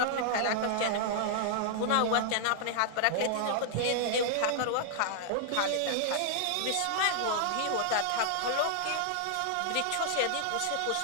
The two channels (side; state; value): both; different; correlation -0.01